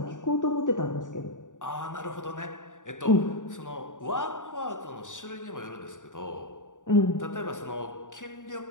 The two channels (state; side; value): late; right; 0.87 ms